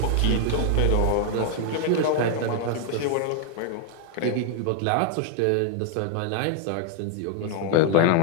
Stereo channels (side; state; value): both; different; correlation 0.00